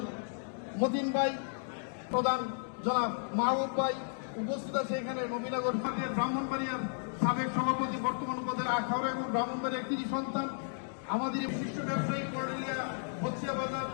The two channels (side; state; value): right; silent; digital silence